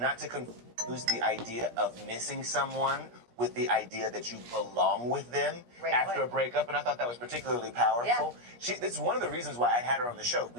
to confuse the idea of missing someone with the idea that you belong with them after a breakup, and I thought that was particularly powerful. Yeah. It's one of the reasons why I had her on the show.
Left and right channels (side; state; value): left; late; 17 ms